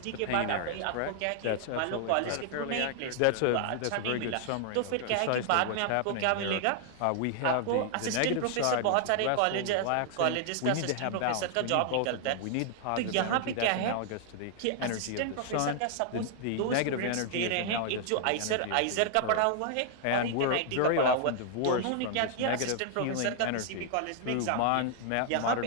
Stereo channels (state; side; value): different; both; correlation 0.00